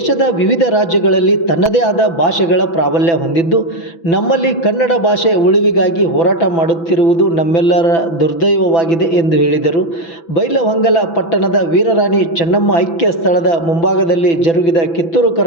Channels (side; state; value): right; late; 6.0 ms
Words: ವಿವಿಧ ರಾಜ್ಯಗಳಲ್ಲಿ ತನ್ನದೇ ಆದ ಭಾಷೆಗಳ ಪ್ರಾಬಲ್ಯ ಹೊಂದಿದ್ದು, ನಮ್ಮಲ್ಲಿ ಕನ್ನಡ ಭಾಷೆ ಉಳಿವಿಗಾಗಿ ಹೋರಾಟ ಮಾಡುತ್ತಿರುವುದು ನಮ್ಮೆಲ್ಲರ ದುರ್ದೈವವಾಗಿದೆ ಎಂದು ಹೇಳಿದರು. ಬೈಲಹೊಂಗಲ ಪಟ್ಟಣದ ವೀರರಾಣಿ ಚೆನ್ನಮ್ಮ ಐಕ್ಯ ಸ್ಥಳದ ಮುಂಭಾಗದಲ್ಲಿ ಜರುಗಿದ ಕಿತ್ತೂರು